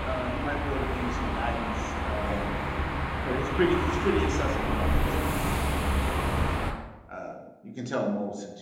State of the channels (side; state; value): both; identical; correlation 1.00